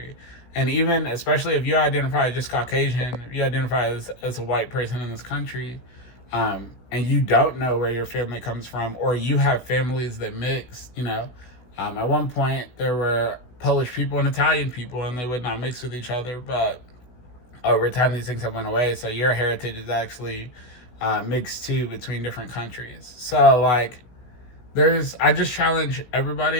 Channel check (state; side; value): late; right; 16 ms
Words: And even especially if you identify as just Caucasian, if you identify as a white person in this country, and you don't know where your family comes from, or you have families that mix, at one point there were Polish people and Italian people, and they would not mix with each other, but over time these things have went away. So your heritage is actually mixed too between different countries. So I just challenge